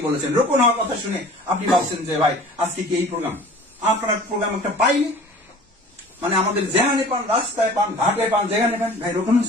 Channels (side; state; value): both; normal; correlation 0.45